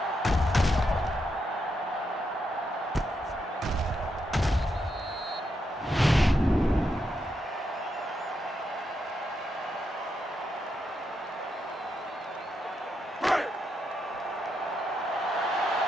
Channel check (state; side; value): normal; both; correlation 0.82